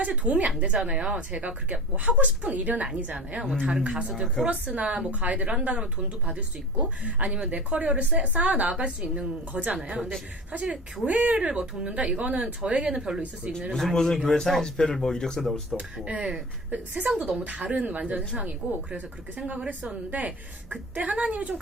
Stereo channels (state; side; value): normal; both; correlation 0.34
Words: 도움이 안 되잖아요. 제가 그렇게 뭐 하고 싶은 일은 아니잖아요. 뭐 다른 가수들 코러스나 뭐 가이드를 한다 그러면 돈도 받을 수 있고 아니면 내 커리어를 쌓아 나갈 수 있는 거잖아요. 근데 사실 교회를 뭐 돕는다 이거는 저에게는 별로 있을 수 있는 일은 아니에요. 무슨 교회 사인 집회를 뭐 이력서 넣을 수도 없고. 네, 세상도 너무 다른 완전 세상이고 그래서 그렇게 생각을 했었는데 그때 하나님이 좀